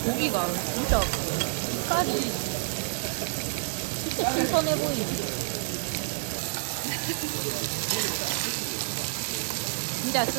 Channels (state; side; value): silent; left; 57 dB below the other